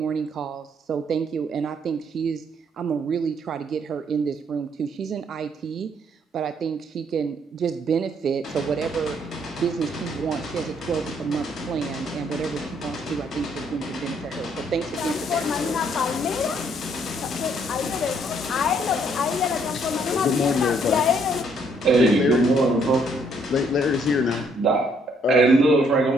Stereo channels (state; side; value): normal; both; correlation 0.67